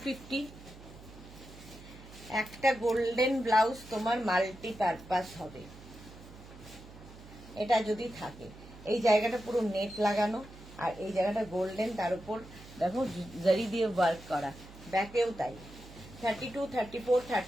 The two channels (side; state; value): right; noise; hum, 18 dB below the sound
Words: একটা গোল্ডেন ব্লাউজ তোমার মাল্টিপারপাস হবে, এটা যদি থাকে। এই জায়গাটা পুরো নেট লাগানো, আর এই জায়গাটা গোল্ডেন, তার উপর দেখো জারি দিয়ে ওয়ার্ক করা, ব্যাকেও তাই। 32, 34,